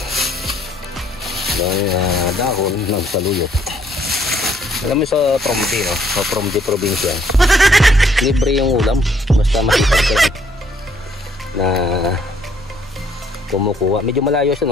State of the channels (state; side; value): normal; both; correlation 0.66